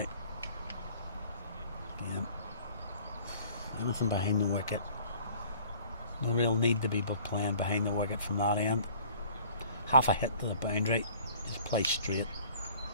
Again, anything behind the wicket. No real need to be playing behind the wicket from that end. Half a hit to the boundary, just play straight.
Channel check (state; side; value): inverted; both; correlation -0.51